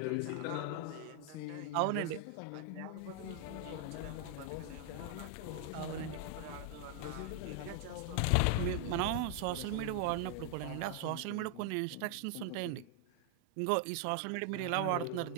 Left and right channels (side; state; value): both; different; correlation 0.00